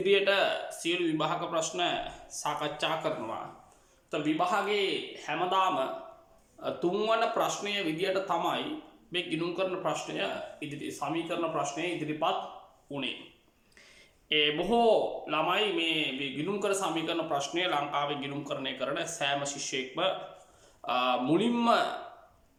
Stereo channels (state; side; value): identical; both; correlation 1.00